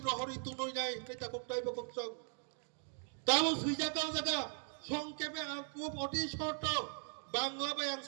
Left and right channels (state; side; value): silent; left; 52 dB below the other